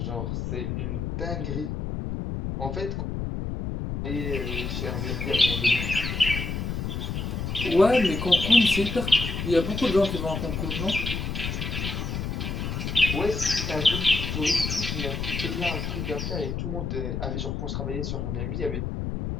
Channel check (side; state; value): left; noise; rumble, 3 dB below the sound